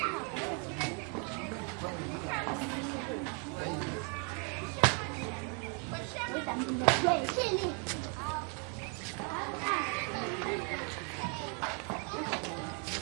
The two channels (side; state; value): left; quieter; 38.5 dB